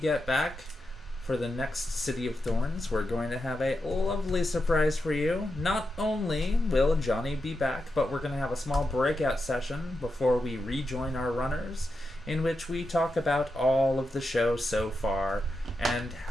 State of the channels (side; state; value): both; normal; correlation 0.87